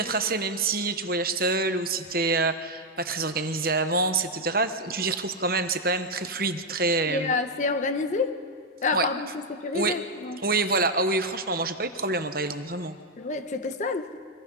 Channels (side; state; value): both; normal; correlation 0.01